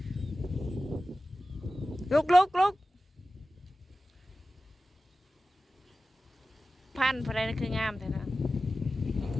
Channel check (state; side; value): normal; both; correlation 0.95